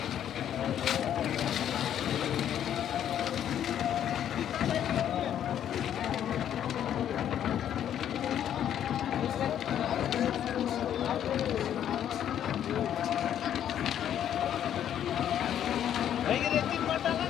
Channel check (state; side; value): quieter; right; 10.1 dB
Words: रेतीत मत टाका